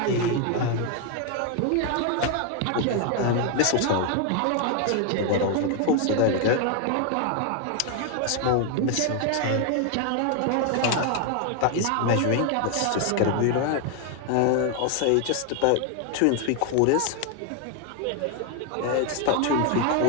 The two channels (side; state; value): both; different; correlation 0.00